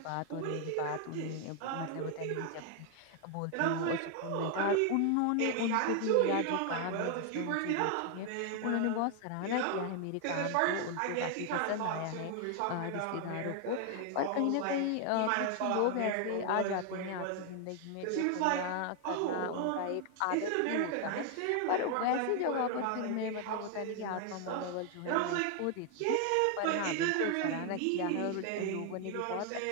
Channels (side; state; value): both; different; correlation 0.00